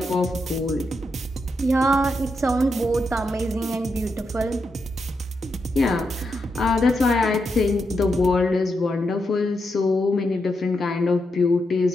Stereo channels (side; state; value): both; normal; correlation 0.84